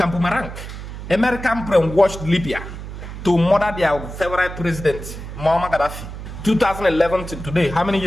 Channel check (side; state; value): right; noise; hum, 10 dB below the sound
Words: boomerang. American brainwashed Libya to murder their favorite president, Muammar Gaddafi. 2011 to today, how many